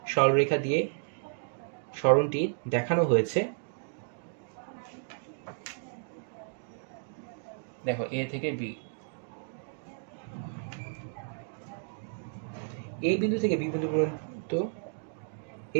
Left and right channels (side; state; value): left; silent; digital silence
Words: সরলরেখা দিয়ে সরণটি দেখানো হয়েছে। দেখো এ থেকে বি, এই বিন্দু থেকে বি বিন্দু পর্যন্ত